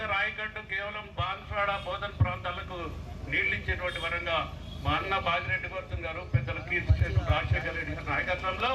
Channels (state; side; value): identical; both; correlation 1.00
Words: ఆయకట్టు కేవలం బాన్స్వాడ, బోధన్ ప్రాంతాలకు నీళ్లు ఇచ్చేటువంటి వరంగా మా అన్న బాజిరెడ్డి గౌతమ్ గారు, పెద్దల కీర్తిశేషు రాజశేఖర రెడ్డి గారి నాయకత్వంలో